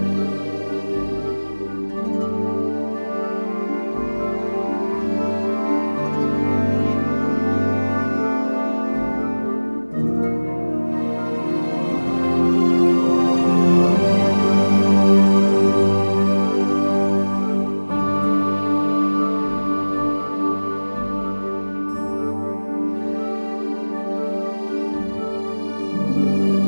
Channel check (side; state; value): both; inverted; correlation -1.00